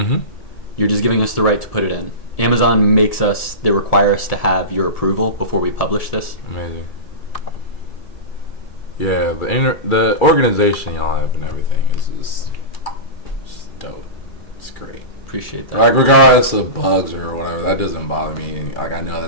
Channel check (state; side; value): late; right; 2.4 ms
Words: You're just giving us the right to put it in. Amazon they require us to have your approval before we publish this. Amazing. Yeah, the organization y'all have and everything is just dope. It's great. Appreciate that. Like, regardless of bugs or whatever, that doesn't bother me. Like, I know